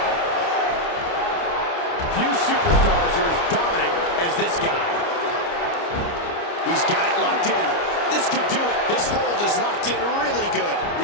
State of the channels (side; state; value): right; late; 29 ms